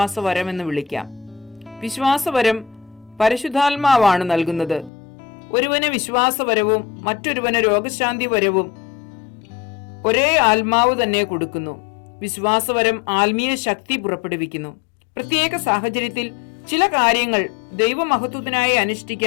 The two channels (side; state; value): right; drops out; at 4.9 s